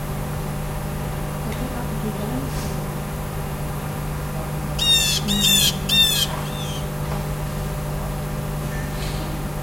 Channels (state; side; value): normal; both; correlation 0.98